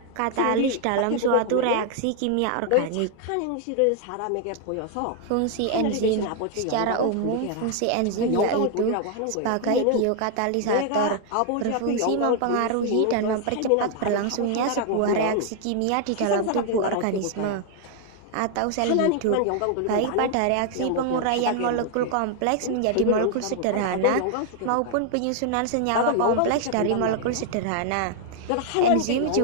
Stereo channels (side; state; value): both; different; correlation 0.00